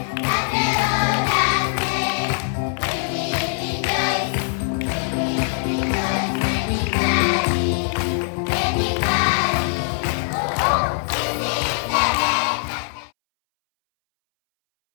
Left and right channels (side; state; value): right; silent; 63 dB below the other